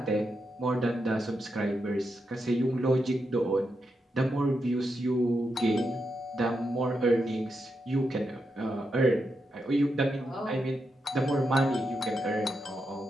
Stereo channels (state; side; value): normal; both; correlation 0.85